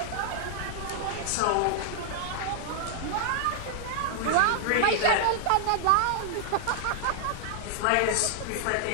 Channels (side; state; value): both; different; correlation 0.00